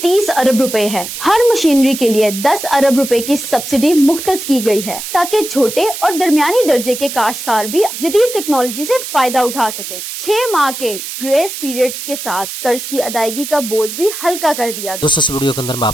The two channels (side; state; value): right; noise; hiss, 8 dB below the sound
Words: अरब रुपए है। हर मशीनरी के लिए 10 अरब रुपए की सब्सिडी मुख्तस की गई है ताकि छोटे और दरमियानी दर्जे के काश्तकार भी जदीद टेक्नोलॉजी से फायदा उठा सके। 6 माह के ग्रेस पीरियड के साथ कर्ज की अदायगी का बोझ भी हल्का कर दिया गया। दोस्तों, इस वीडियो के अंदर मैं